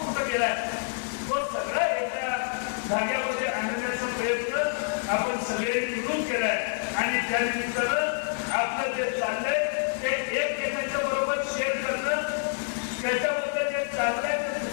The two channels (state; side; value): silent; right; digital silence